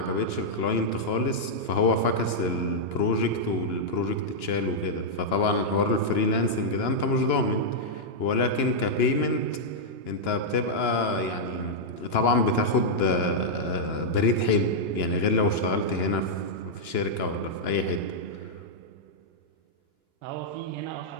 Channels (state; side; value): late; right; 2.9 ms